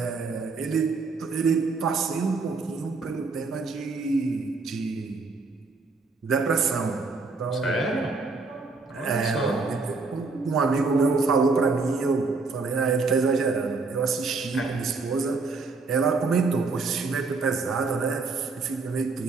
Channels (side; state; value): left; quieter; 4.1 dB